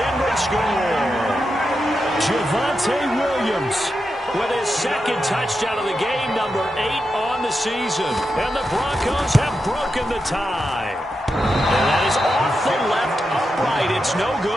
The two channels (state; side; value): normal; both; correlation 0.87